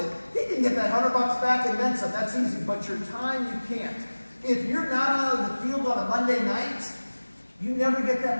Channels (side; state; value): both; inverted; correlation -1.00